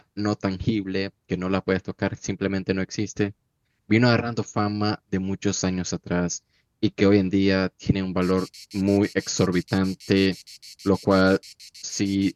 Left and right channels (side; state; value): both; identical; correlation 1.00